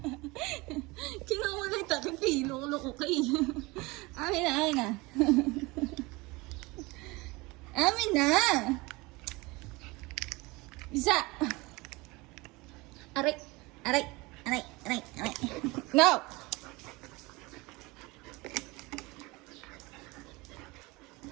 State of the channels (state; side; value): quieter; left; 23.5 dB